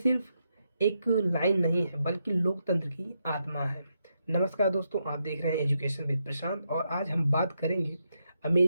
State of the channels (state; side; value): inverted; both; correlation -0.82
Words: एक लाइन नहीं है बल्कि लोकतंत्र की आत्मा है। नमस्कार दोस्तों, आप देख रहे हैं एजुकेशन विद प्रशांत और आज हम बात करेंगे